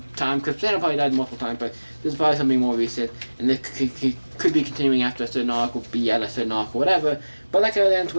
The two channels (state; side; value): inverted; both; correlation -1.00